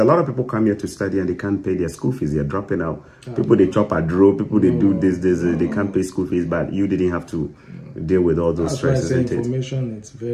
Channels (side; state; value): both; identical; correlation 1.00